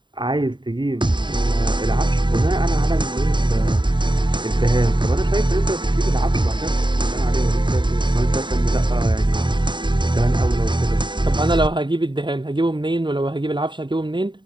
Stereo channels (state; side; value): late; left; 0.23 ms